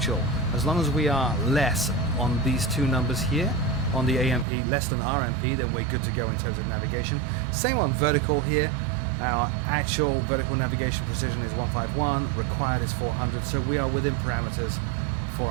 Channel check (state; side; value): drops out; left; at 4.5 s